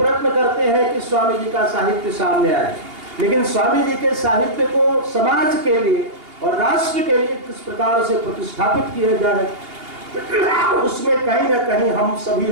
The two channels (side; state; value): left; late; 2.8 ms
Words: करते हैं कि स्वामी जी का साहित्य सामने आए, लेकिन स्वामी जी के साहित्य को समाज के लिए और राष्ट्र के लिए किस प्रकार से प्रतिष्ठापित किया जाए, उसमें कहीं ना कहीं हम